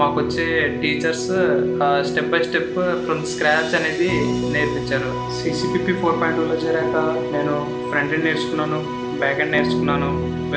మాకు వచ్చే teachers step by step from scratch అనేది నేర్పించారు. CCBP 4.2లో చేరాక నేను ఫ్రంట్ ఎండ్ నేర్చుకున్నాను, బ్యాక్ ఎండ్ నేర్చుకున్నాను,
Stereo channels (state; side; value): identical; both; correlation 1.00